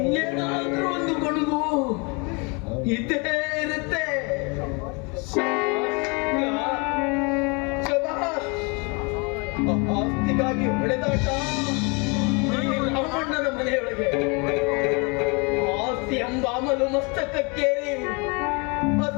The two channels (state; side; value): quieter; right; 31.0 dB